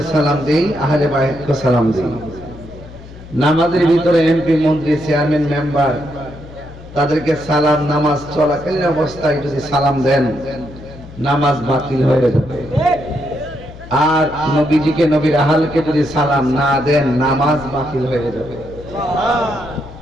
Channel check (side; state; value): left; noise; hum, 17 dB below the sound